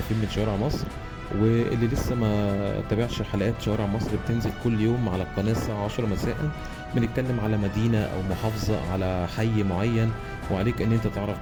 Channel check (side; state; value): both; identical; correlation 1.00